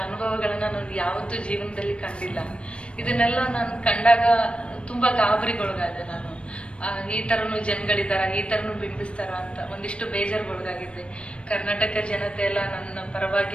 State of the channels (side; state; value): right; late; 0.059 ms